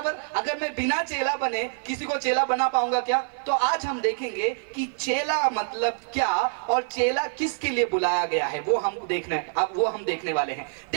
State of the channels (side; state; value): left; silent; digital silence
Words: अगर मैं बिना चेला बने किसी को चेला बना पाऊंगा क्या? तो आज हम देखेंगे कि चेला मतलब क्या और चेला किसके लिए बुलाया गया है, वो हम देखने वाले हैं।